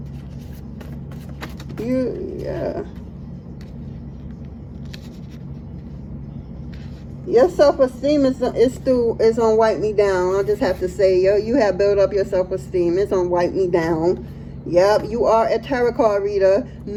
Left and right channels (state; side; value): identical; both; correlation 1.00